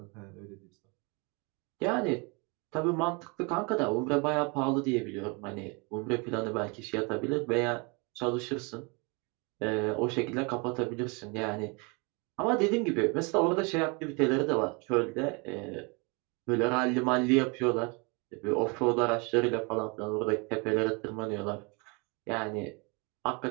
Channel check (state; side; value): quieter; left; 30.8 dB